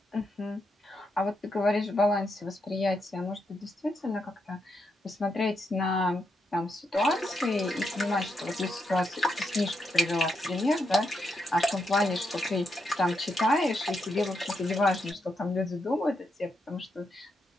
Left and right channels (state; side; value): normal; both; correlation 0.82